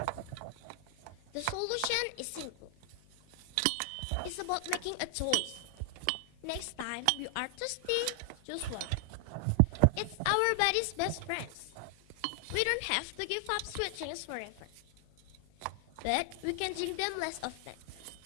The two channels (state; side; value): different; both; correlation 0.00